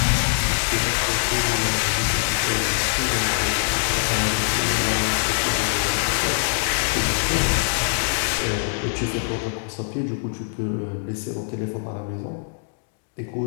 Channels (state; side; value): silent; right; digital silence